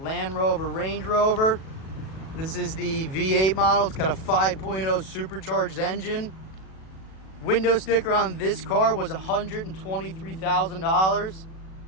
Rover Range Rover. This is the V8 model. It's got a 5.0 supercharged engine. Window sticker on this car was $123,000.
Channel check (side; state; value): right; late; 37 ms